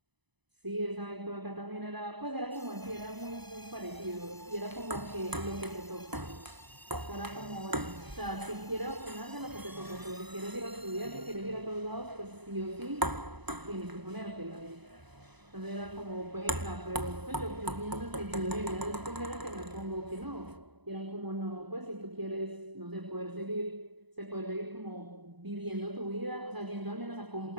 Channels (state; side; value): late; left; 1.0 ms